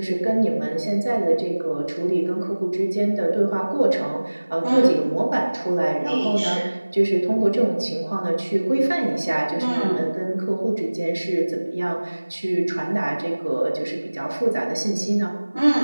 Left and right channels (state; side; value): inverted; both; correlation -1.00